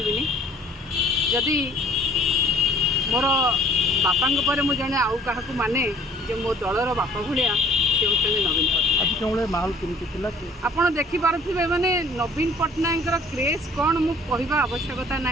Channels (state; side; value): normal; both; correlation 0.54